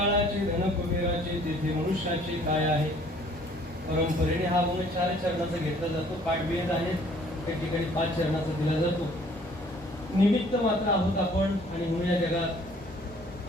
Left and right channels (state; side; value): normal; both; correlation 0.57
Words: धन कुबेराचे तेथे मनुष्याचे काय आहे. परंपरेने हा गुण 4 चरणाचा घेतला जातो. पाठभेद आहे त्या ठिकाणी 5 चरणाचा दिला जातो. निमित्त मात्र आहोत आपण आणि म्हणून या